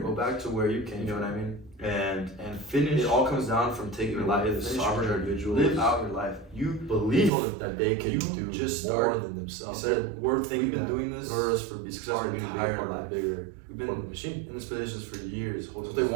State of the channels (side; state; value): left; drops out; at 7.3 s